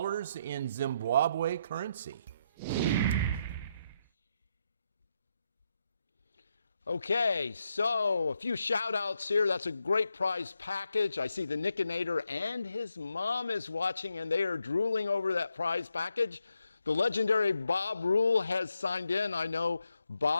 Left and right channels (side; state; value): both; inverted; correlation -0.81